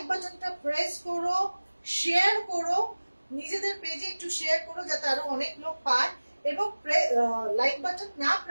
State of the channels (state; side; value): inverted; both; correlation -1.00